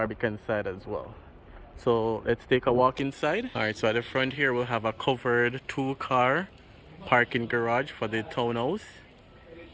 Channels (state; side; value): identical; both; correlation 1.00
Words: side as well. So let's take a walk inside. Alright, so at the front here we'll have a covered 2-car parking garage for the townhouse.